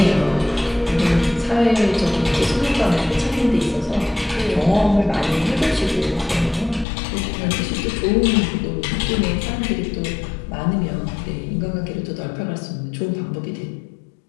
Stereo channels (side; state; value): right; drops out; at 6.9 s